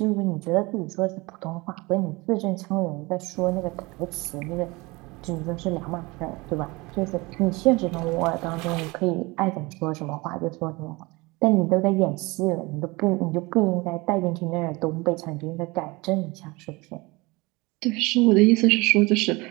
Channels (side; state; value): left; quieter; 24.0 dB